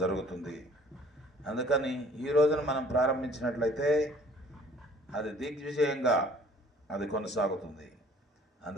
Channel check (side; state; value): both; normal; correlation 0.54